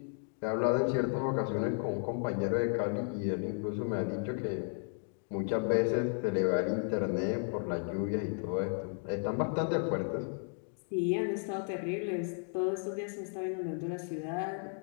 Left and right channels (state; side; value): silent; right; 55 dB below the other